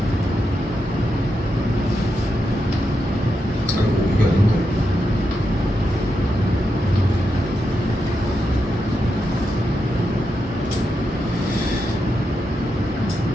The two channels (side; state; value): both; normal; correlation 0.85